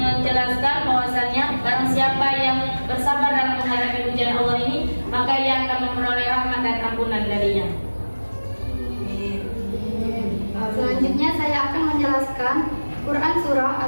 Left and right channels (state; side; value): inverted; both; correlation -1.00